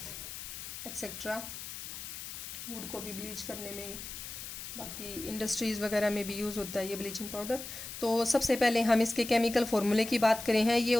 etcetera. Wood को भी ब्लीच करने में, बाकी इंडस्ट्रीज़ वगैरह में भी यूज़ होता है ये ब्लीचिंग पाउडर। तो सबसे पहले हम इसके केमिकल फार्मूले की बात करें हैं। ये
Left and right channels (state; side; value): noise; left; hiss, 9 dB below the sound